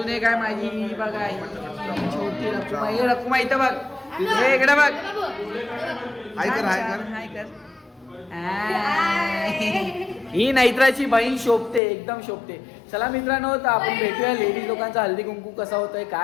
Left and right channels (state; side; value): drops out; right; at 11.8 s